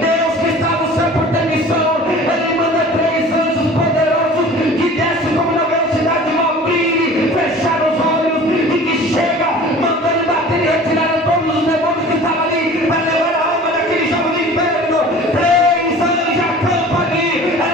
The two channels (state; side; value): normal; both; correlation 0.43